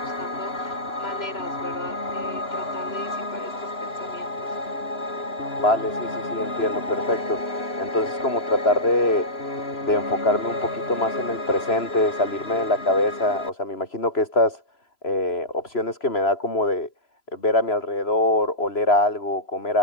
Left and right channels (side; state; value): right; late; 3.0 ms